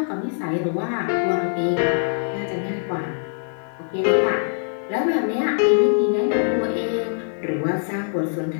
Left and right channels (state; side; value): silent; right; 64 dB below the other